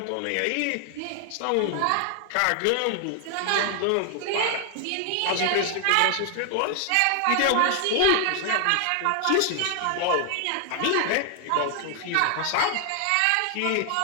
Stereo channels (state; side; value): different; both; correlation 0.00